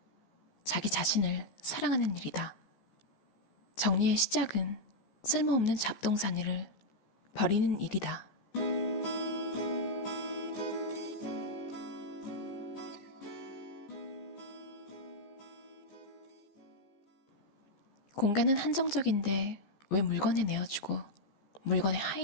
자기 자신을 사랑하는 일이다. 정리의 시작은 쓸모없는 잡동사니를 버리는 일이다. 공간은 한정적인데 왜 물건에 내어주고 물건의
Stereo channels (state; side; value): late; right; 15 ms